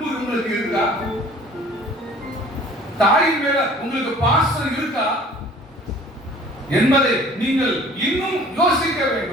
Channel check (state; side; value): normal; both; correlation 0.50